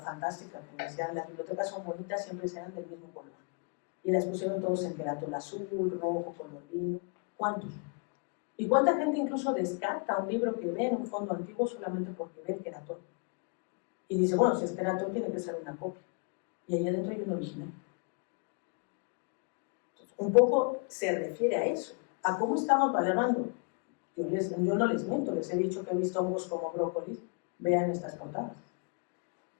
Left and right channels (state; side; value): quieter; right; 35.9 dB